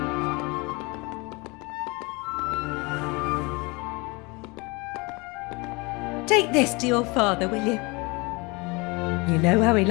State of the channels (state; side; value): quieter; right; 26.7 dB